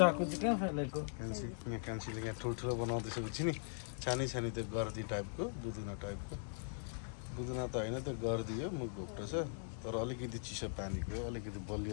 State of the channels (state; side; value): silent; right; digital silence